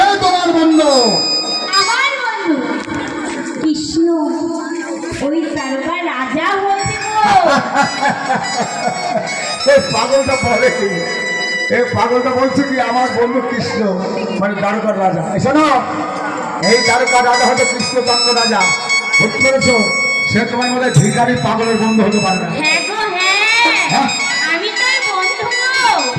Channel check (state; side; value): identical; both; correlation 1.00